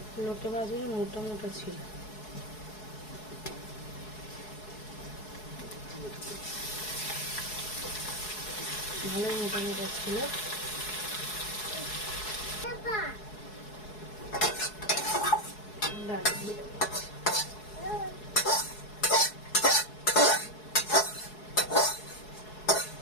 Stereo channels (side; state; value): right; late; 4.7 ms